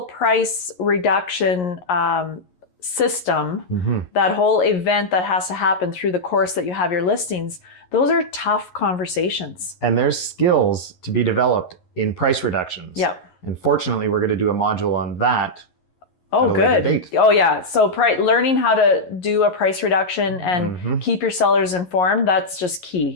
price reduction system, that whole event that has to happen through the course that you have your listings, those are tough conversations. And there's skills to be developed in price reductions. Yep. And fortunately, we're going to do a module on that. Oh, at a later good. date. Oh, yeah. So learning how to do a price reduction and keep your sellers informed, that's just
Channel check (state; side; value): late; right; 11 ms